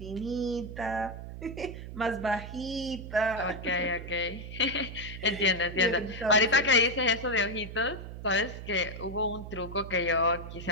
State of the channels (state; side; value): noise; right; hum, 10 dB below the sound